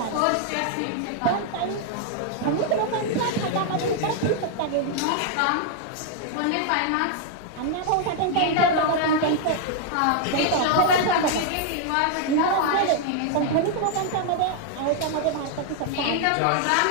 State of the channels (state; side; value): different; both; correlation 0.00